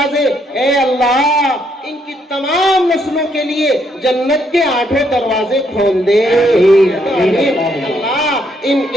اے اللہ ان کی تمام نسلوں کے لیے جنت کے 8 دروازے کھول دے۔ اللہ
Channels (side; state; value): both; normal; correlation 0.73